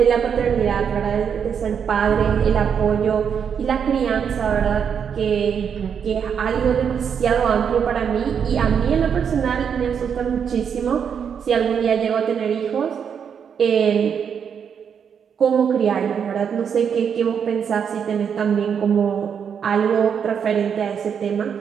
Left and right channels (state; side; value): quieter; left; 7.4 dB